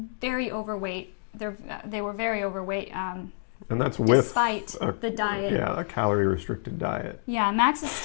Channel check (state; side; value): silent; right; digital silence